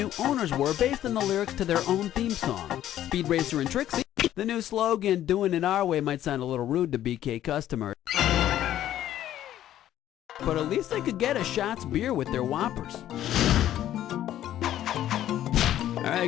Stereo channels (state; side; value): quieter; right; 12.2 dB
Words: owners were based on the lyrics to their own theme song? Speed Racer and Trixie? The new slogan, doing it our way, might sound a little rude to BK customers. But at least they could get a Shots beer with their Whoppers. Alright.